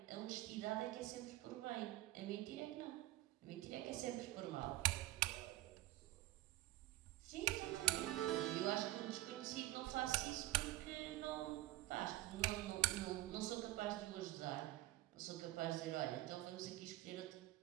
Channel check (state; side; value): quieter; left; 16.8 dB